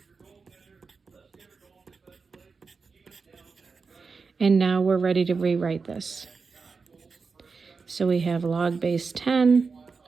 And now we're ready to rewrite this. So we have log base 10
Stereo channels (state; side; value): quieter; left; 4.8 dB